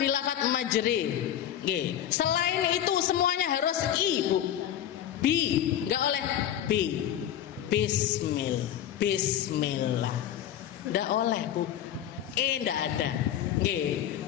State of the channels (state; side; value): quieter; right; 10.9 dB